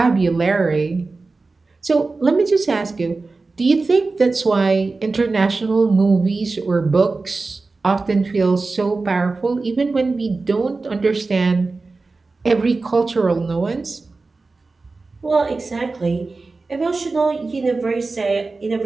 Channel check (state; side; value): quieter; left; 3.8 dB